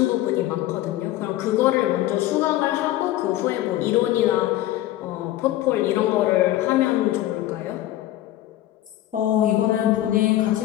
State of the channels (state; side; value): quieter; right; 14.5 dB